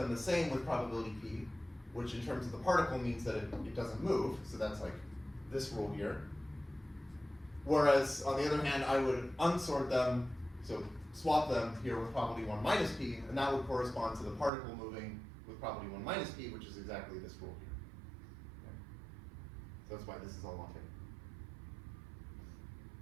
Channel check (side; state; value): left; drops out; at 14.5 s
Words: the same with probability P, which in terms of the particle means that it doesn't move, so that's like this rule here. Whereas, on the other hand, I would unsort them, so swap them here with probability 1 minus p, and that would correspond to the particle moving with probability 1 minus p, which is exactly this rule here. Okay. So that's why this is all one thing.